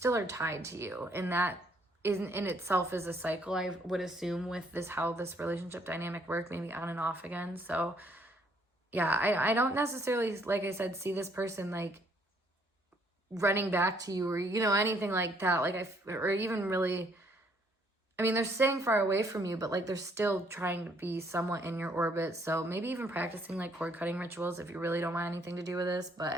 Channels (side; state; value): both; normal; correlation 0.67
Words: are tied to you, and that in itself is a cycle, I would assume, with this, how this relationship dynamic work, maybe on and off again. So yeah, I don't necessarily, like I said, see this person like running back to you, or you know, anything like that. Like or even really, I mean, they're staying far away from you, but like they're still trying to be somewhat in your orbit. So maybe even practicing like cord cutting rituals if you really don't want anything to do with this.